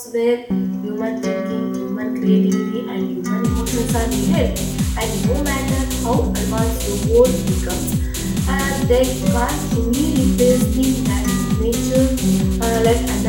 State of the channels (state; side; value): identical; both; correlation 1.00